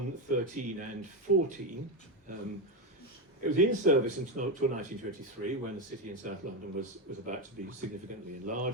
13 and 14. It was in service until 1923, when the city in South London was about to be significantly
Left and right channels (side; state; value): both; normal; correlation 0.11